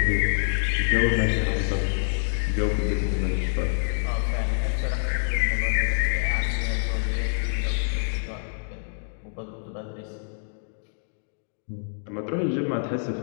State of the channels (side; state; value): right; silent; digital silence